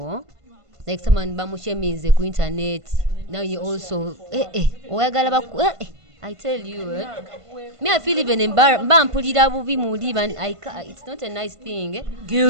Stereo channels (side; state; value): left; late; 1.5 ms